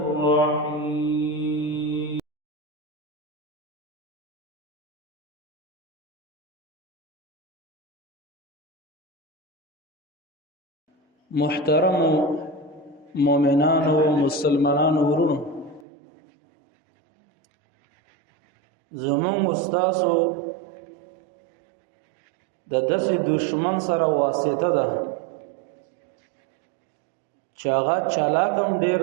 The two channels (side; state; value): left; drops out; at 15.9 s